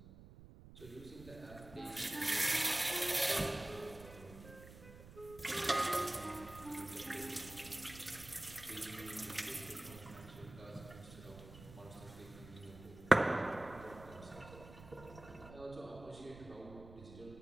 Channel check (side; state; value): right; noise; rumble, 16 dB below the sound